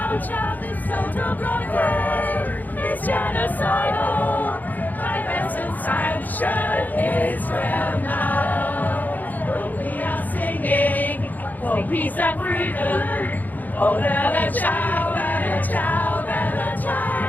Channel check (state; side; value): late; right; 0.083 ms